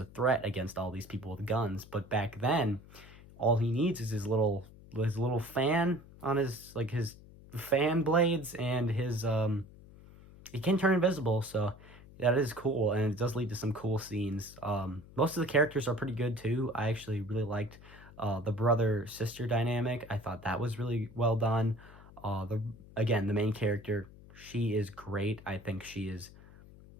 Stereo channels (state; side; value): noise; left; hum, 20 dB below the sound